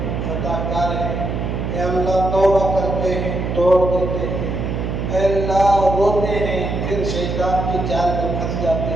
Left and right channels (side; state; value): right; noise; hum, 2 dB below the sound